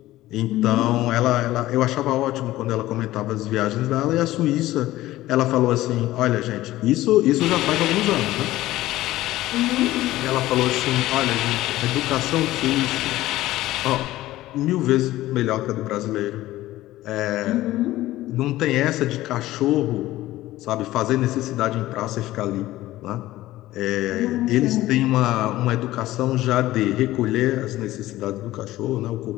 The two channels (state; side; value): quieter; right; 16.1 dB